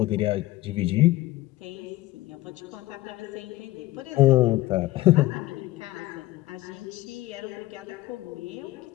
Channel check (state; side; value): quieter; right; 17.1 dB